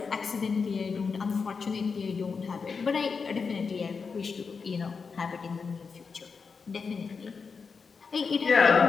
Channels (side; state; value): right; quieter; 5.2 dB